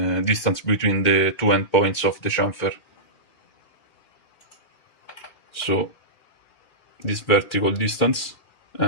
distance between the two endpoints of the chamfer. So this vertical distance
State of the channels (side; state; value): right; late; 2.2 ms